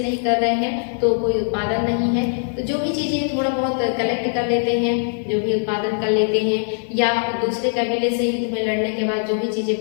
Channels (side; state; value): right; silent; digital silence